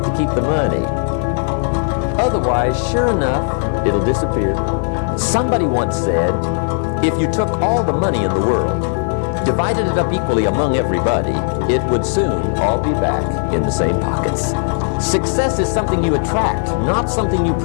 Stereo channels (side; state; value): right; silent; digital silence